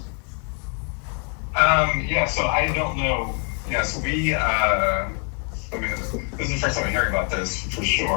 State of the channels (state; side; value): quieter; right; 39.7 dB